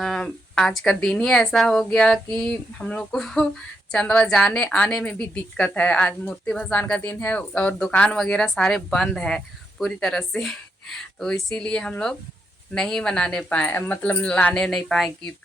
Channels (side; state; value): both; normal; correlation 0.81